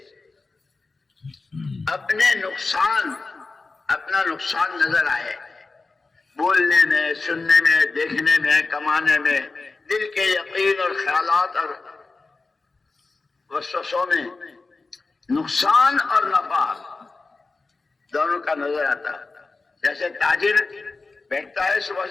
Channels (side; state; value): right; quieter; 3.8 dB